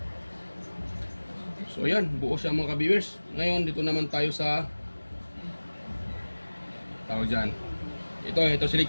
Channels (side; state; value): both; inverted; correlation -1.00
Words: So yan, buo siya mga ka-viewers. Ngayon dito naman tayo sa tawag dyan. Ito